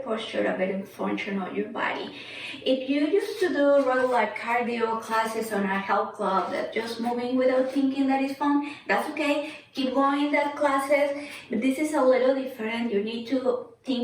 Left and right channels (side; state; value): both; identical; correlation 1.00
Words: posture, a better function of your body. If you used to do regular cardio classes on a health club that just moving without thinking that is fun, that's okay. Keep going that classes, but this is a little different. You need to